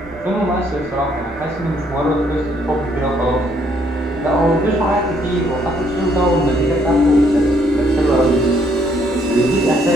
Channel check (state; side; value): normal; both; correlation 0.69